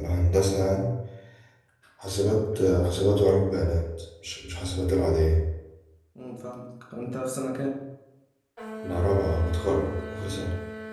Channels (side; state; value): both; identical; correlation 1.00